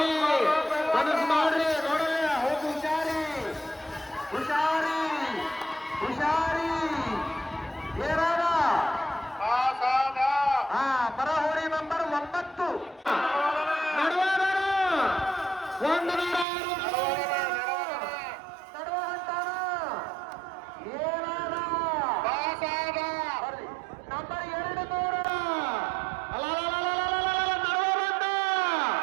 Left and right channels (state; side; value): drops out; left; at 16.4 s